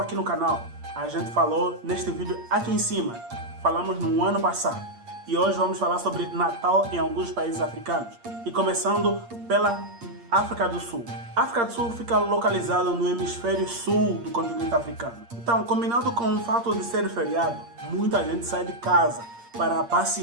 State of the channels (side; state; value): left; late; 8.6 ms